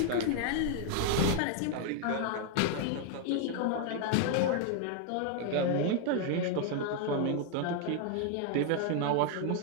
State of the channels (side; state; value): both; different; correlation 0.00